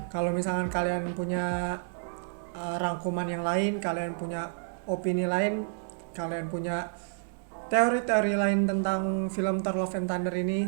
kalau misalkan kalian punya rangkuman yang lain, kalian punya opini lain, kalian punya teori-teori lain tentang film Thor Love and Thunder ini,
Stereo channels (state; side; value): silent; left; digital silence